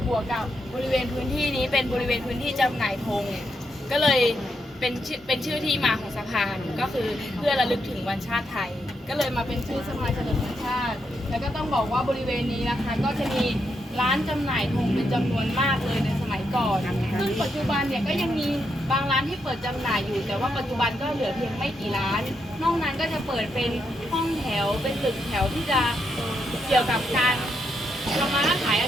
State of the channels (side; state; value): both; normal; correlation 0.81